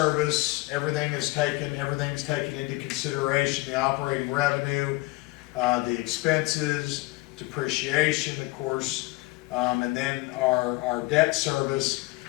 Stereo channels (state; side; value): quieter; right; 22.0 dB